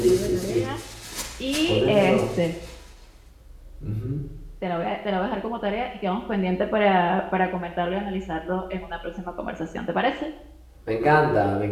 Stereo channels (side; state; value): both; identical; correlation 1.00